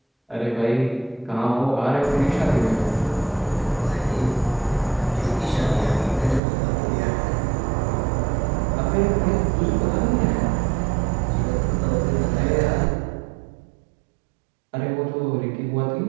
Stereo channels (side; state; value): left; drops out; at 6.4 s